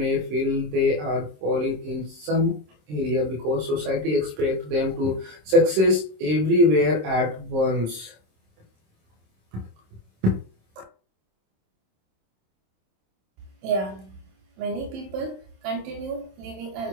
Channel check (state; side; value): late; left; 26 ms